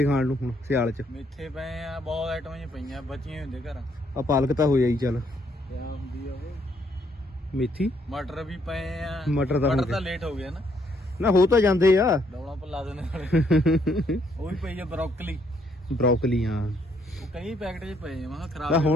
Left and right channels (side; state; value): both; normal; correlation 0.71